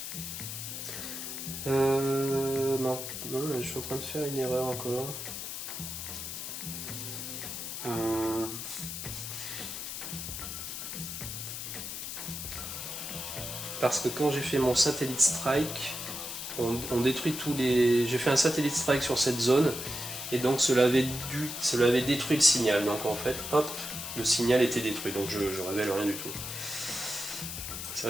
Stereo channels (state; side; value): noise; left; hiss, 6 dB below the sound